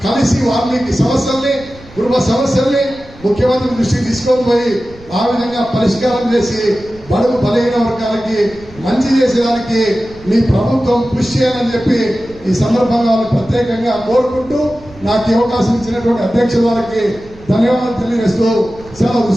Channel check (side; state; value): right; noise; rumble, 21 dB below the sound